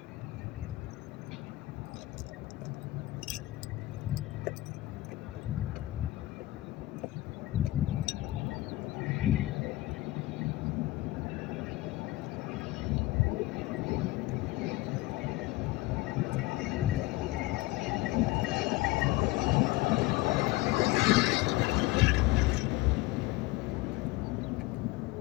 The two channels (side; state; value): right; quieter; 18.6 dB